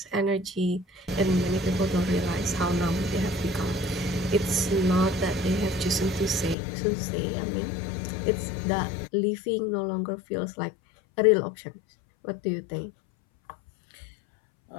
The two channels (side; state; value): right; drops out; at 6.6 s